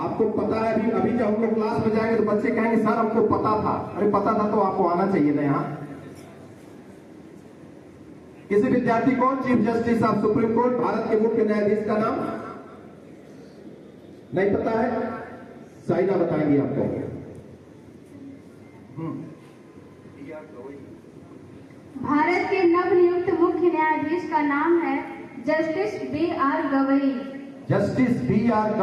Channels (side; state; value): both; identical; correlation 1.00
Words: पता है। अभी जब हम लोग क्लास में जाएंगे तो बच्चे कहेंगे सर हमको पता था। अरे पता था तो आपको आना चाहिए ना यहाँ। किसी विद्यार्थी को chief justice of supreme court, Bharat के मुख्य न्यायाधीश का नाम नहीं पता है? साइना बताएंगी आपको। भारत के नवनियुक्त मुख्य न्यायाधीश का नाम है justice B.R. Gavai. Justice B.R.